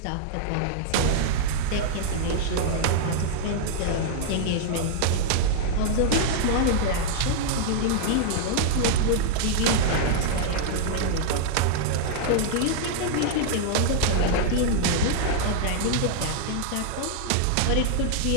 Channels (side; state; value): both; different; correlation -0.01